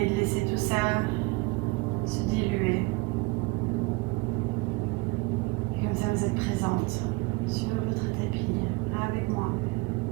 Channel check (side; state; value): left; quieter; 25.5 dB